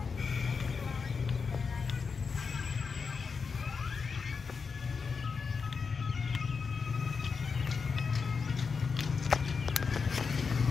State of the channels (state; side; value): quieter; right; 5.3 dB